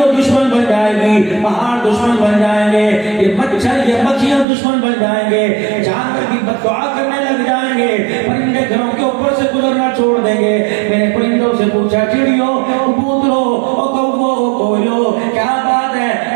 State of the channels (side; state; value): left; drops out; at 4.5 s